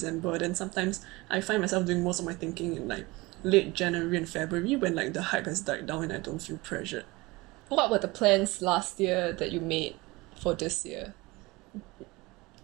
then sometimes I find myself doing most of my thinking in like late January and February when like the hype has died down and I don't feel pressured. What were the plans last year that you made for this year?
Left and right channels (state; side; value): quieter; left; 22.5 dB